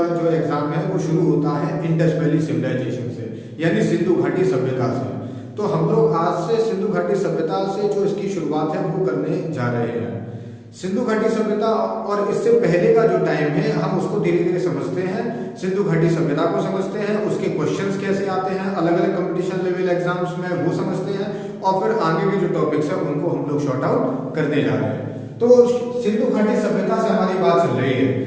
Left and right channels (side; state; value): both; identical; correlation 1.00